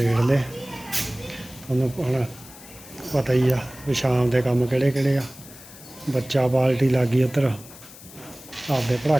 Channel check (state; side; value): noise; left; hiss, 19 dB below the sound